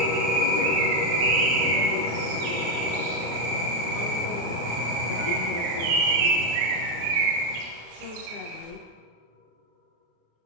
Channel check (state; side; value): late; left; 34 ms